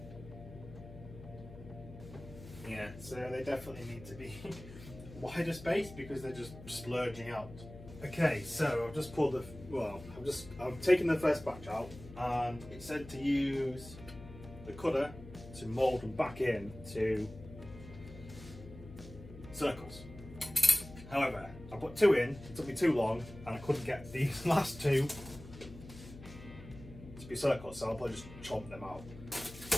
Yeah, so they definitely need to be wider space because they're just splurging out. Okay, so I've just pulled I've taken the first batch out, and it said to use the cutter to mould them back in to circles. However, I put 2 in, it took me too long, and I couldn't get these last 2 to be circles, so I'll probably just chomp them out.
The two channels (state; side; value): noise; left; hum, 15 dB below the sound